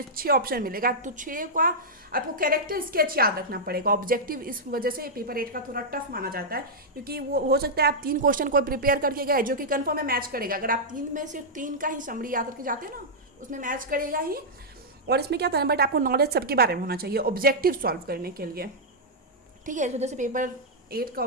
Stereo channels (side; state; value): both; normal; correlation -0.08